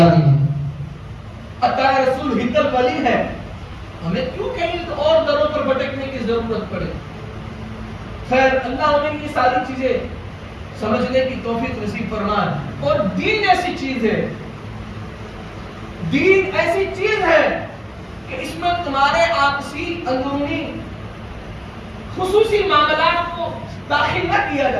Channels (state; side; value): identical; both; correlation 1.00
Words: ہے, عطا رسول ہندل ولی ہے. ہمیں کیوں کہیں اور دروں پر بھٹکنے کی ضرورت پڑے. خیر اللہ ہمیں یہ ساری چیزیں سمجھنے کی توفیق نصیب فرمائے. اور دین ایسی چیز ہے, دین ایسی چیز ہے کہ اس میں تمہارے آپسی اندرونی خصوصی معاملات کو داخل نہ کیا